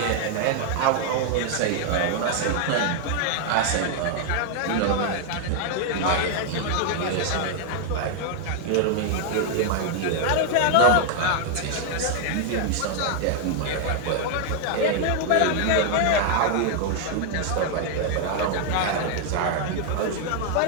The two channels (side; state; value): both; different; correlation 0.00